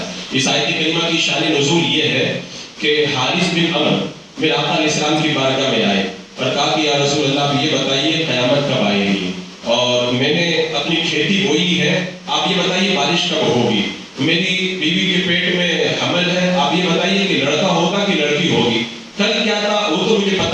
اس آیت کریمہ کی شان نزول یہ ہے کہ حارث بن عمر میرے آقا علیہ السلام کی بارگاہ میں آئے اور کہا کہ یا رسول اللہ آپ یہ بتائیے قیامت کب آئے گی, اور میں نے اپنی کھیتی بوئی ہے, آپ یہ بتائیے بارش کب ہوگی. میری بیوی کے پیٹ میں حمل ہے, آپ یہ بتائیے کہ لڑکا ہوگا کہ لڑکی ہوگی. کل کیا تھا وہ تو مجھے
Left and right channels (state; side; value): identical; both; correlation 1.00